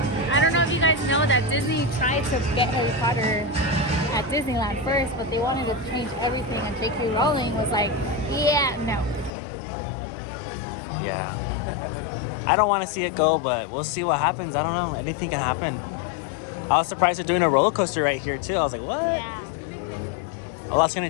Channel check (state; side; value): drops out; right; at 9.3 s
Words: I don't know if you guys know that Disney tried to get Harry Potter at Disneyland first, but they wanted to change everything, and J.K. Rowling was like, yeah, no. Yeah. I don't want to see it go, but we'll see what happens. I don't know. Anything can happen. I was surprised they're doing a roller coaster right here too. I was like, what? Yeah. A lot's gonna